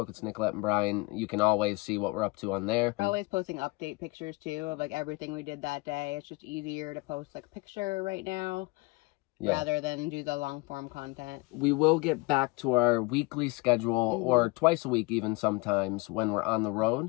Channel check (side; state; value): right; quieter; 24.3 dB